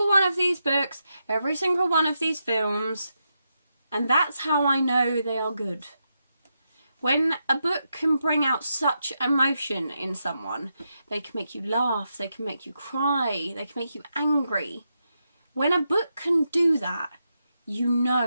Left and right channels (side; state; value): both; inverted; correlation -0.85